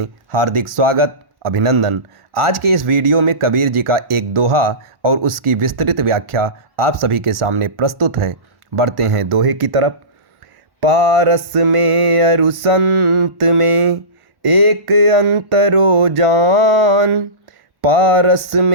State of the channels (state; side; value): late; left; 1.1 ms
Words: हार्दिक स्वागत अभिनंदन। आज के इस वीडियो में कबीर जी का एक दोहा और उसकी विस्तृत व्याख्या आप सभी के सामने प्रस्तुत है। बढ़ते हैं दोहे की तरफ। पारस में अरु संत में एक अंतरो जान, पारस